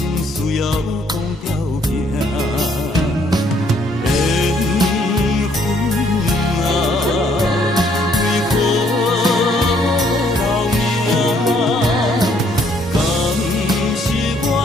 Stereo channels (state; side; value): normal; both; correlation 0.66